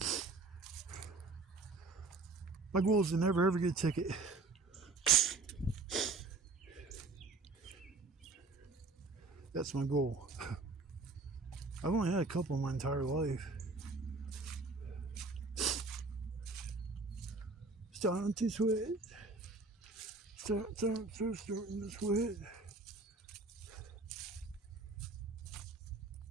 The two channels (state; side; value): quieter; left; 3.8 dB